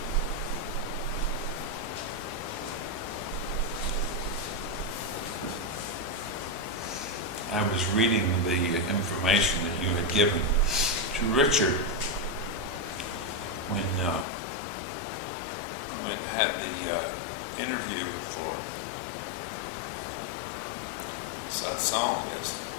I was reading the information that you had given to Richard when had the interview for Satsang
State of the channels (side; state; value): right; drops out; at 14.2 s